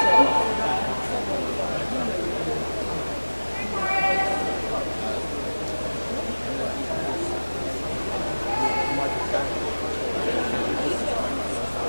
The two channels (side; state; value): both; inverted; correlation -1.00